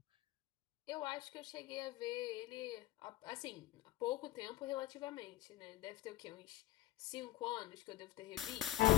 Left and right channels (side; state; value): right; quieter; 15.7 dB